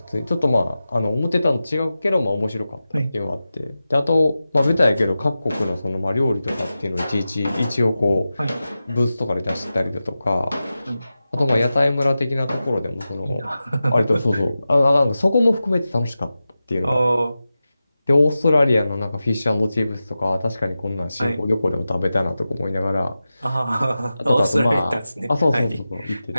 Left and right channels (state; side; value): inverted; both; correlation -0.94